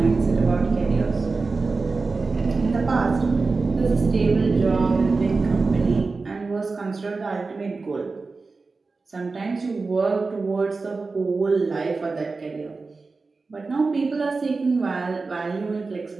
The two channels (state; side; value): quieter; left; 4.0 dB